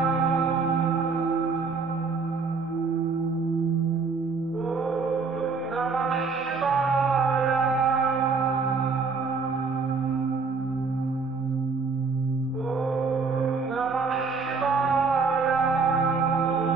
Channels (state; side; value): quieter; left; 4.7 dB